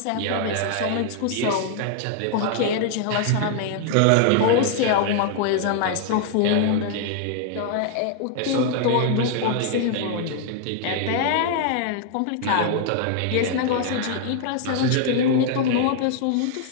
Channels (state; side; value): different; both; correlation 0.00